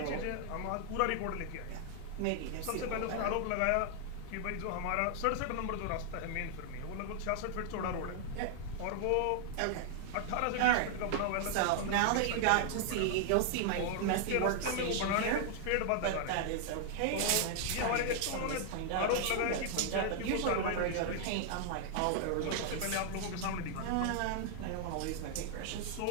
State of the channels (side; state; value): both; different; correlation 0.00